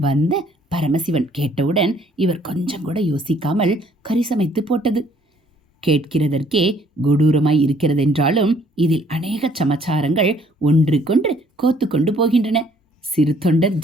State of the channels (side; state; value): both; normal; correlation 0.61